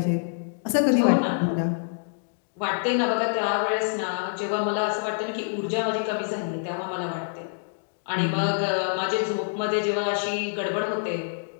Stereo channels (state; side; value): silent; right; digital silence